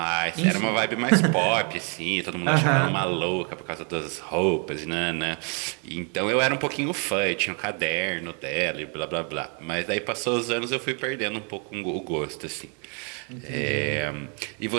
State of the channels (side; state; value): left; quieter; 37.8 dB